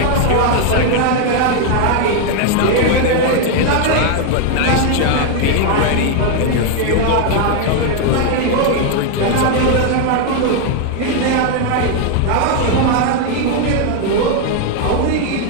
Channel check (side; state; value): both; different; correlation 0.01